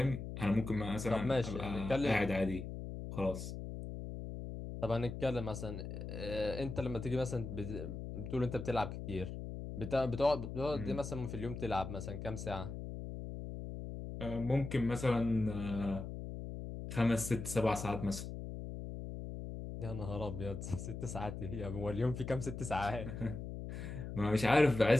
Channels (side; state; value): left; noise; hum, 7 dB below the sound